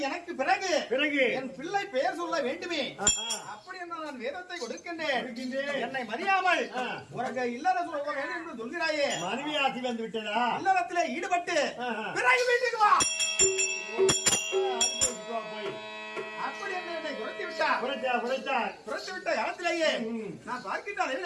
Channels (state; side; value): identical; both; correlation 1.00